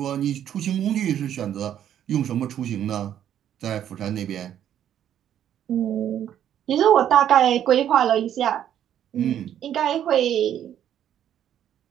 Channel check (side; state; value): left; quieter; 10.3 dB